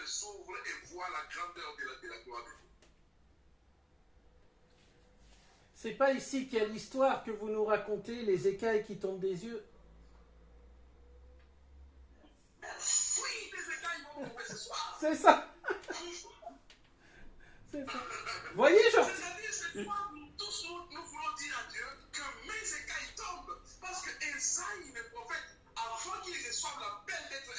s'ouvrent et voient la grandeur de la gloire de Dieu. C'est pas ici qu'il y a l'histoire que vous nous racontez, les écailles qui tombent des yeux? Oui, les écailles vont tomber ce soir. C'est ça. C'est ça. Voyez, genre... C'est-à-dire, c'est quoi tous nous voulons dire à Dieu que mes écailles tombent. Parce que Esaïe, le prophète, avant qu'il reçoive l'appel d'être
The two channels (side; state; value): both; identical; correlation 1.00